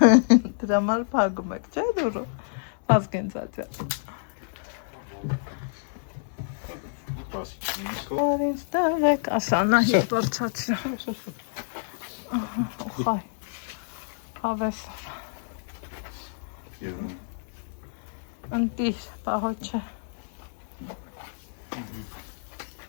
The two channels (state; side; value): silent; right; digital silence